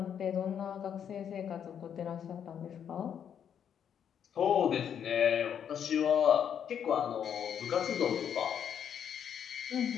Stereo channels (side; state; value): right; quieter; 8.5 dB